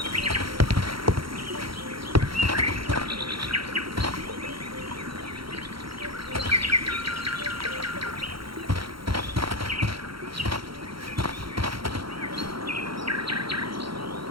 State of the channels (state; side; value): late; left; 0.74 ms